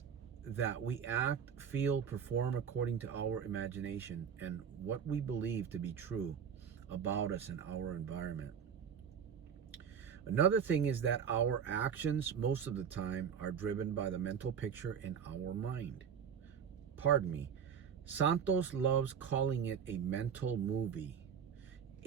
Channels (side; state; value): left; quieter; 7.5 dB